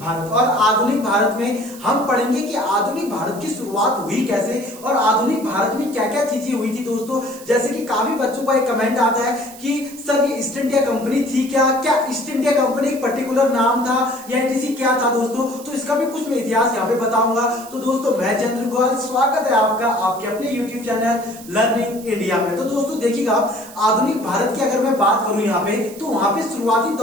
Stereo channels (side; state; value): right; noise; hiss, 18 dB below the sound